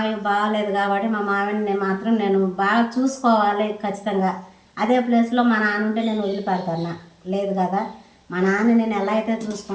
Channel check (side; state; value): both; identical; correlation 1.00